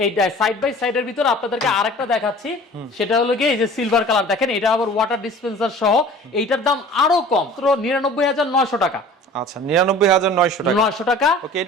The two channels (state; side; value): normal; both; correlation 0.45